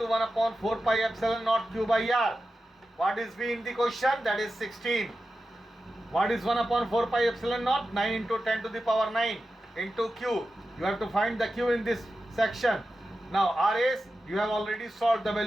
1/4 pi epsilon naught Q by R। What is V in the question? That is 16. What is 1/4 pi epsilon naught? 9 into 10 to the power 9 into Q. You have to find the Q in this section. Now R is, you have already solved the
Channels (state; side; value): normal; both; correlation 0.92